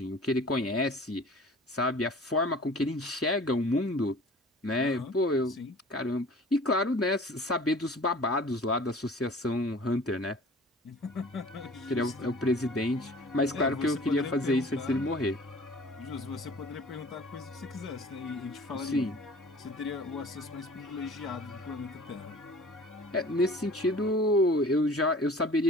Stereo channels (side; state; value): both; normal; correlation 0.46